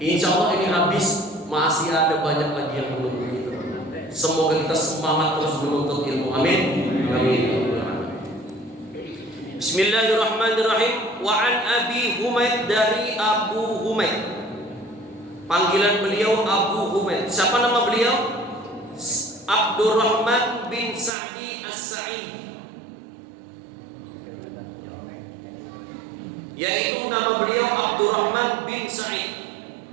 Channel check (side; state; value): left; drops out; at 21.1 s